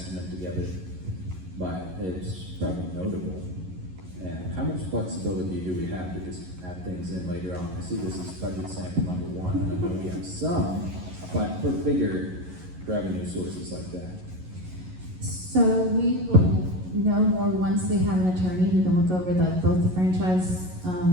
together, but it's probably notable. And how much flexibility do we have to just add things in later on? I see this is budget sample number 1, and I know we have some, but for bigger revenue sources like that. So we will know more once we have an attorney who can look over both the franchise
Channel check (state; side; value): late; left; 11 ms